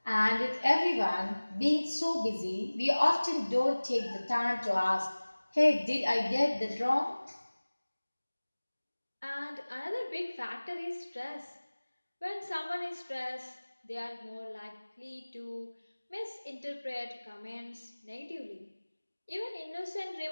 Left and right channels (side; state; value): both; inverted; correlation -1.00